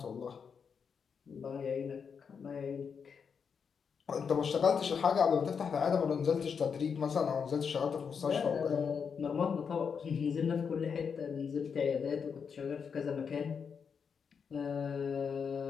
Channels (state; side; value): quieter; right; 6.4 dB